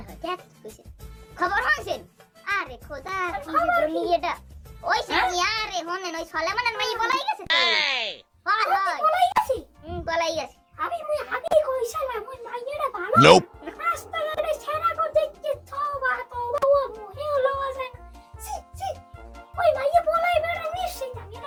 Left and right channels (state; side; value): identical; both; correlation 1.00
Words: হয় দেখ কইছে খবর হইছেন আরে খোদা কি যে দুনিয়াটা ওই সাথী আরে হনেন ওই সলেমানের মাই বলাই গেছে তো হয় হয় বলাই গেছি বলাই গেছে আমি আগে কইছিলাম ওই মাইয়াটা ভালো Nope. রাস্তাঘাটে ছেড়া কো দেখতে তওবা তওবা ও মুহে লওয়া যায় না সি সি ওই মাইয়া বলাইবে না নিশ্চিত আমি